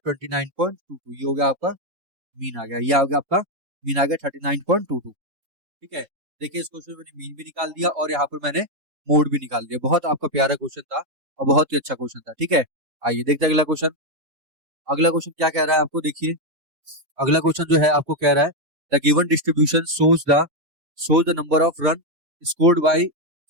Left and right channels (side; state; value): left; late; 3.7 ms